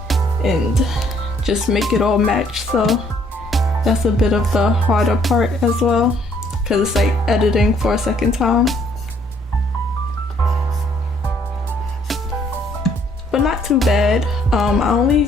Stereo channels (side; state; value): both; normal; correlation 0.64